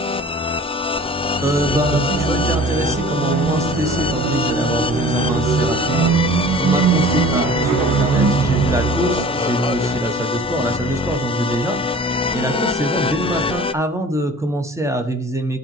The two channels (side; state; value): both; normal; correlation 0.44